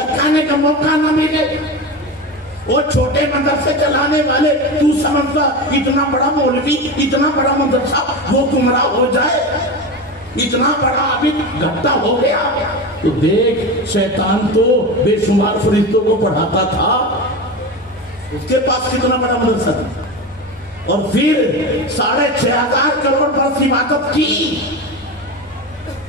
کا موقع نہ ملے. وہ چھوٹے مدرسے چلانے والے تو سمجھتا اتنا بڑا مولوی، اتنا بڑا مدرسہ وہ گمراہ ہو جائے، اتنا بڑا عابد گھٹا ہو گیا. تو دیکھ شیطان تو بے شمار فرشتوں کو پڑھاتا تھا، اس کے پاس کتنا بڑا مدرسہ تھا. اور پھر 6,500 کروڑ برس عبادت کی،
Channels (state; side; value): normal; both; correlation 0.24